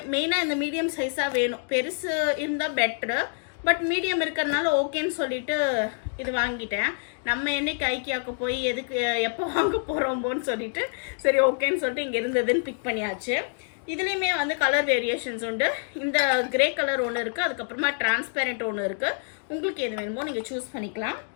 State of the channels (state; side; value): silent; right; 60 dB below the other